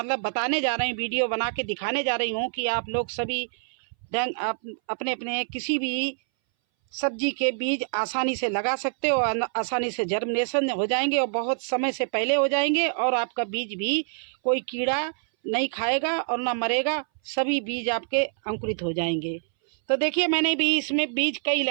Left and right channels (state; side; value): silent; left; 60 dB below the other